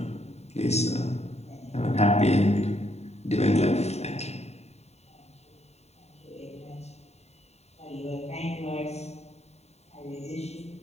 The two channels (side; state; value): right; late; 0.31 ms